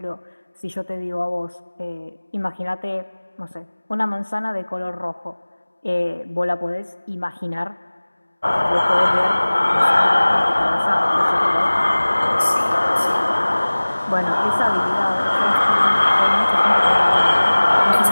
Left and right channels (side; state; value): both; inverted; correlation -1.00